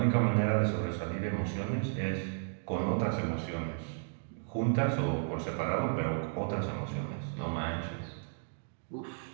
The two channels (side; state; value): left; silent; digital silence